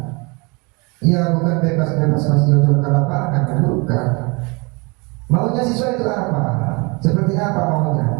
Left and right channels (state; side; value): quieter; left; 28.7 dB